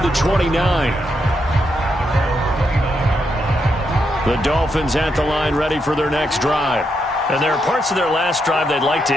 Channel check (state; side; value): normal; both; correlation 0.81